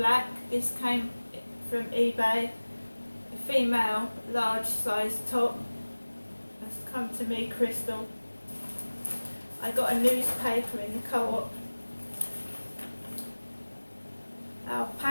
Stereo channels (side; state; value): both; inverted; correlation -1.00